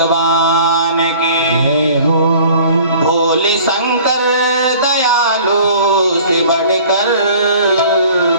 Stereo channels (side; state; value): both; inverted; correlation -0.49